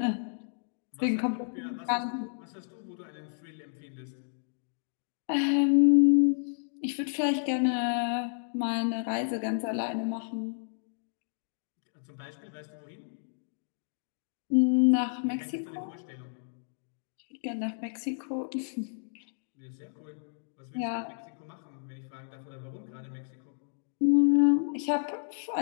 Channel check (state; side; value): silent; right; digital silence